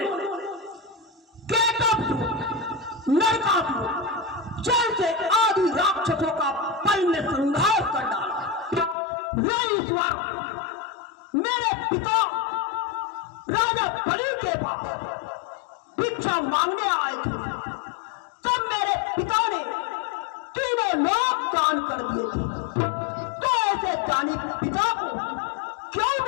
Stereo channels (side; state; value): right; drops out; at 9.0 s